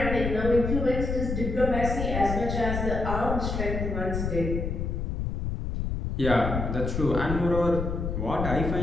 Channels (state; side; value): noise; left; rumble, 2 dB below the sound